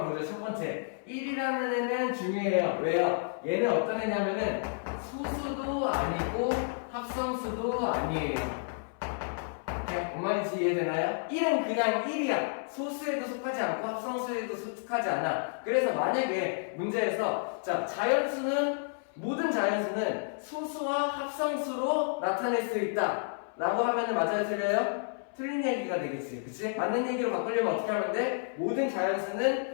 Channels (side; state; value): right; silent; 57 dB below the other